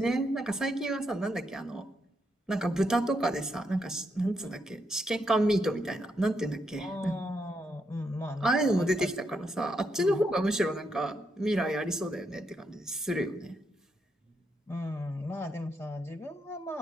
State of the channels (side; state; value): both; normal; correlation 0.80